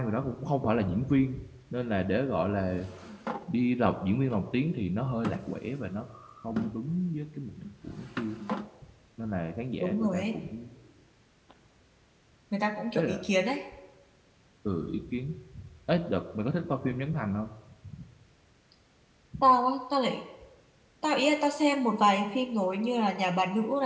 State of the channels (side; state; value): both; identical; correlation 1.00